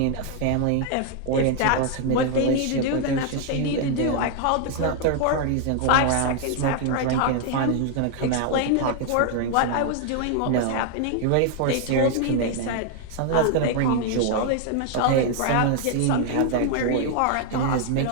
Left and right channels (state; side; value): different; both; correlation 0.00